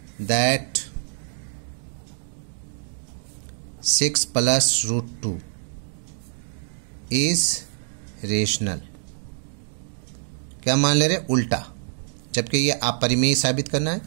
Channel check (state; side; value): silent; left; digital silence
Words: that 6 + √2 is rational. क्या मान ले रहे? उल्टा, जबकि ये अपरिमेय साबित करना है,